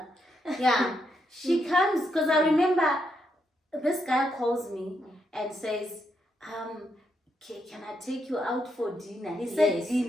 She comes, because I remember this guy calls me and says, can I take you out for dinner? He said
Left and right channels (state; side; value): normal; both; correlation 0.80